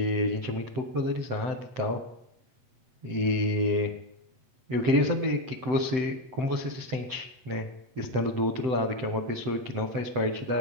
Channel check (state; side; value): late; left; 7.8 ms